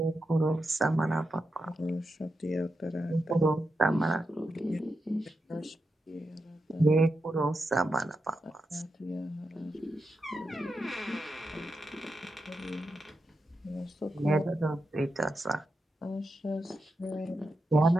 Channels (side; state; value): both; normal; correlation 0.87